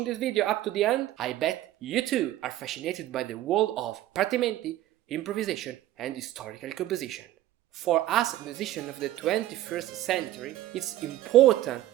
this video up to the end, I bet you too are fascinated by the world of partimenti, improvisation and historical composition. For us musicians of the 21st century, it's important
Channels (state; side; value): quieter; left; 14.4 dB